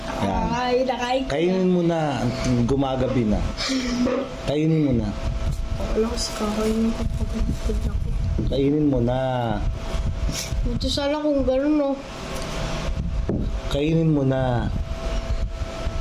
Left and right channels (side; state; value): both; identical; correlation 1.00